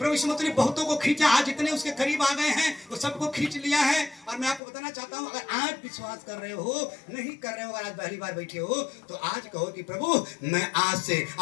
यीशु मसीह ने बहुतों को खींचा, आज जितने उसके करीब आ गए हैं वो सबको खींच लिया है। और मैं आपको बताना चाहता हूं, अगर आज विश्वास कर रहे हो, नहीं कर रहे हो, अगर आज पहली बार बैठे हो तो आज कहो कि प्रभु मैं आज से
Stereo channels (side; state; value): right; drops out; at 4.6 s